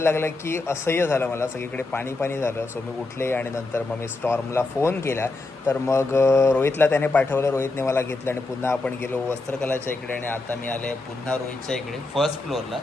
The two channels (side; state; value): right; quieter; 3.2 dB